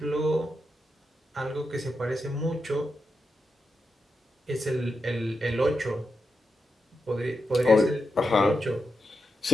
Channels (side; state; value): both; normal; correlation 0.87